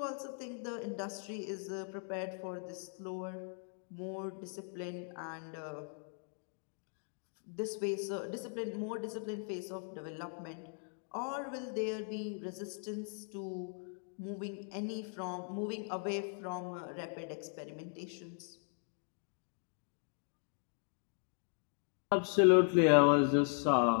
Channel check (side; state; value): right; silent; 52 dB below the other